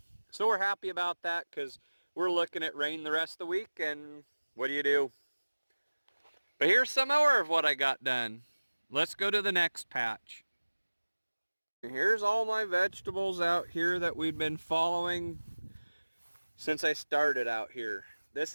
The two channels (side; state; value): both; inverted; correlation -1.00